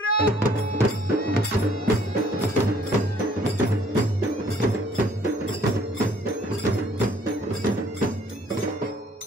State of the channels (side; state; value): both; normal; correlation 0.61